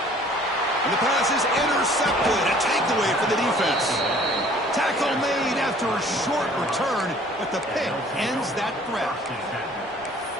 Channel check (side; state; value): both; normal; correlation 0.53